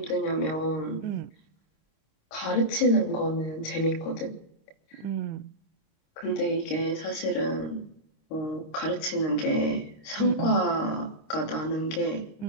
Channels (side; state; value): right; late; 26 ms